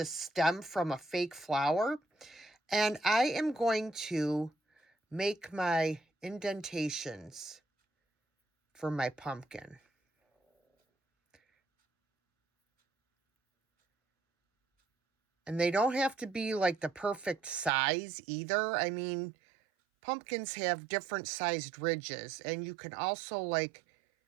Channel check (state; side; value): drops out; left; at 17.7 s